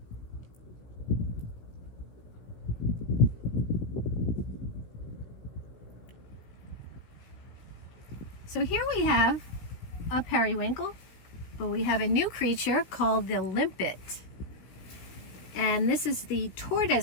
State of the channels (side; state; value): right; late; 16 ms